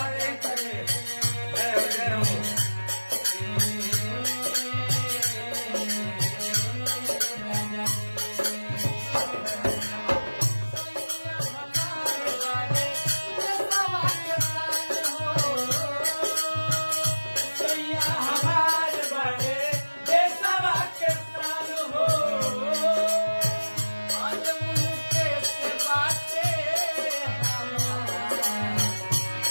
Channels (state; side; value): inverted; both; correlation -1.00